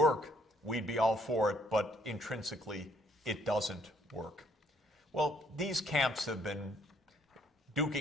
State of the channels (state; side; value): normal; both; correlation 0.66